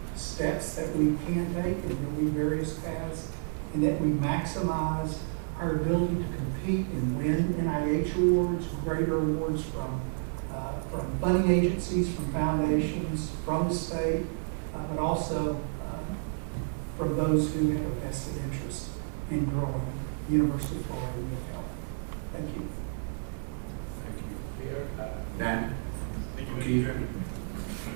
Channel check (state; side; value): silent; left; digital silence